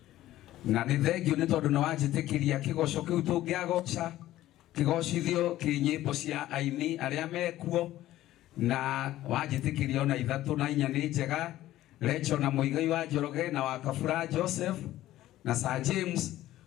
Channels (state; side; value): quieter; right; 14.6 dB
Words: Na ni thank you ni tondu na wanjitikiria kigoco kiu tungiagoca kigocithio kinyimbo cia aini aria mekuo na wanjitikiria ona ithatu na inya ni njega. Rachel na Muigai wa Njoroge na wa Kabura Joseph na Sir James